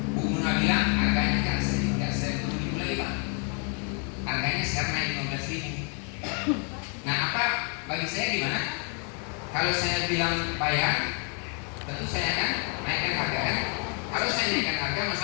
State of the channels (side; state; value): right; quieter; 39.1 dB